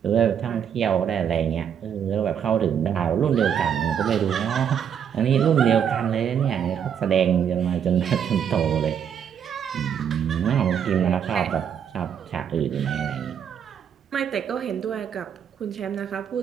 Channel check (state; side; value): quieter; left; 8.3 dB